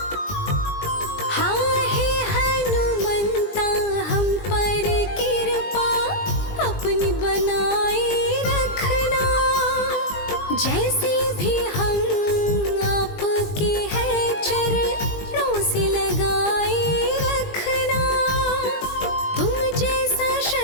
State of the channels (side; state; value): right; late; 20 ms